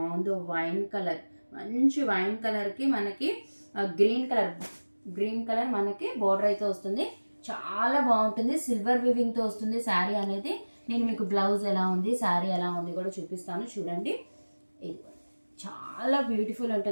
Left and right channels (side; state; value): both; inverted; correlation -1.00